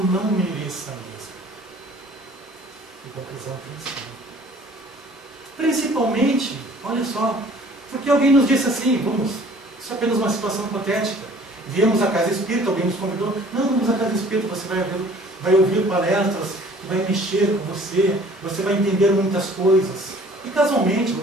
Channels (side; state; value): both; normal; correlation 0.52